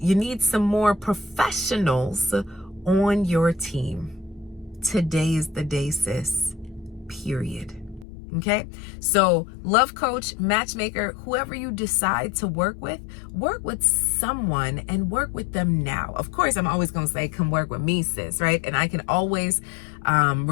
need some more professionals on your team. Today is the day, sis. Period. Okay? So love coach, matchmaker, whoever you decide to work with someone and work with them now. Of course, I'm always going to say, come work with me, sis, right? And I can always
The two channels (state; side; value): drops out; right; at 8.1 s